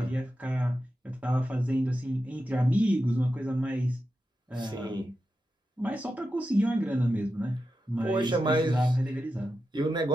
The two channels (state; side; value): normal; both; correlation 0.90